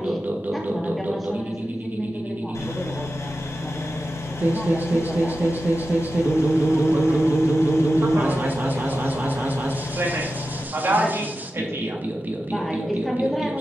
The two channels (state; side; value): normal; both; correlation 0.92